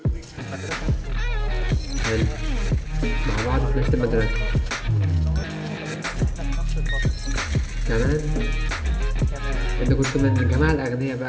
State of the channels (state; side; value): identical; both; correlation 1.00